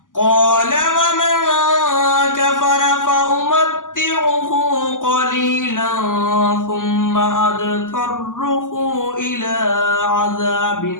قَالَ وَمَنْ كَفَرَ فَأُمَتِّعُهُ قَلِيلًا ثُمَّ أَضْطَرُّهُ إِلَىٰ عَذَابِ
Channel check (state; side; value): late; right; 0.88 ms